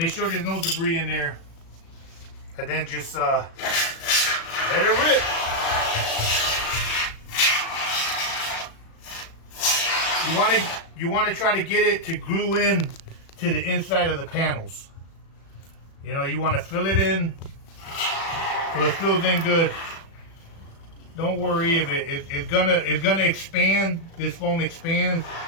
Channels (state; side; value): late; right; 36 ms